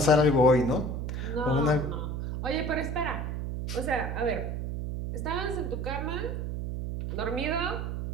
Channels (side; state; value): right; noise; hum, 3 dB below the sound